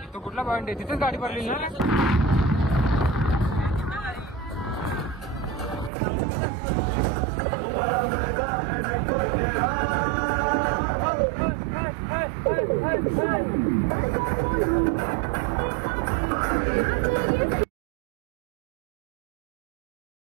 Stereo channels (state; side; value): drops out; left; at 5.9 s